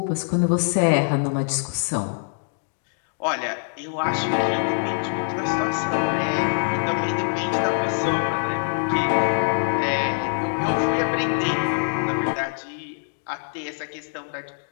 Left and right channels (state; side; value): silent; right; 63 dB below the other